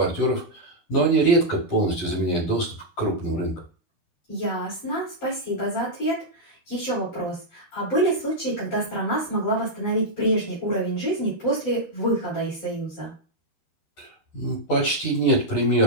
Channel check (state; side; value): late; right; 11 ms